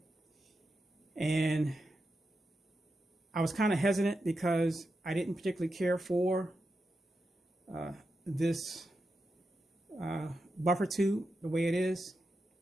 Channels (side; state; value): both; normal; correlation 0.88